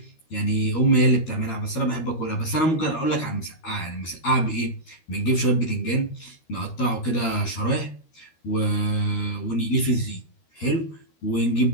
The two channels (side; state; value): right; late; 13 ms